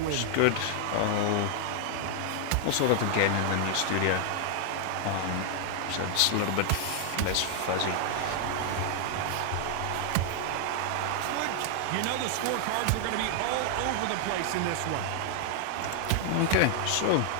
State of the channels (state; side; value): different; both; correlation 0.00